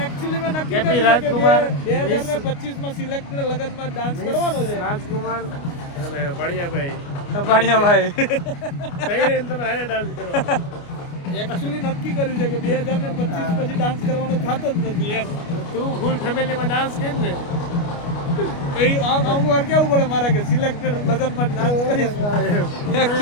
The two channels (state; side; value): late; right; 29 ms